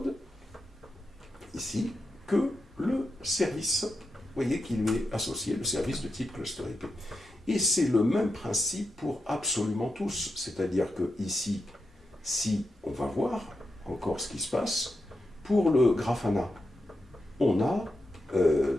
ici, que le service, vous voyez, qui lui est associé, le service de type cluster IP. Et c'est le même principe pour absolument tous. C'est-à-dire que ici, si on va voir encore ce qui se passe, pour le Grafana, on a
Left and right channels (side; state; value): both; normal; correlation 0.87